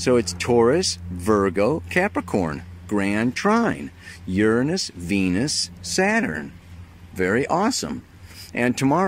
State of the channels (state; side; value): identical; both; correlation 1.00